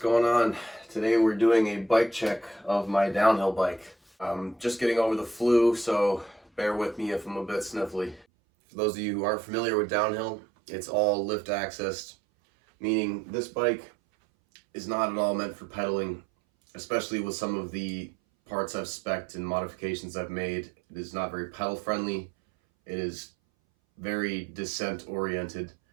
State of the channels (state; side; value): drops out; left; at 8.2 s